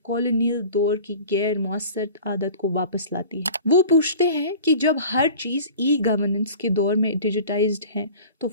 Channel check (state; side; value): inverted; both; correlation -0.41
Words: کالونیل دور کی غیر مؤثر عادت کو واپس لاتی ہے۔ وہ پوچھتے ہیں کہ جب ہر چیز ای گورننس کے دور میں ڈیجیٹائزڈ ہے تو